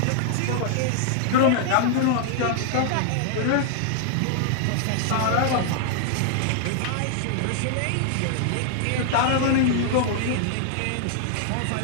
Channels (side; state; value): both; different; correlation -0.01